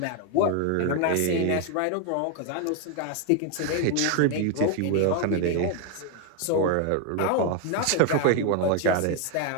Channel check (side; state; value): both; different; correlation 0.01